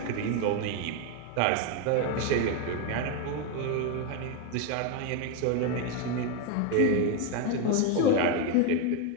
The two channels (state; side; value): different; both; correlation 0.02